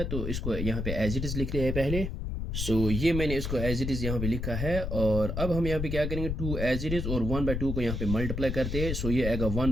तो इसको यहाँ पे एज इट इज़ लिखते हैं पहले। सो ये मैंने इसको एज इट इज़ यहाँ पे लिखा है, और अब हम यहाँ पे क्या करेंगे, 2 एज इट इज़ और 1/2 को यहाँ पे मल्टीप्लाई करते हैं। सो ये आएगा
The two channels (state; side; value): noise; left; rumble, 3 dB below the sound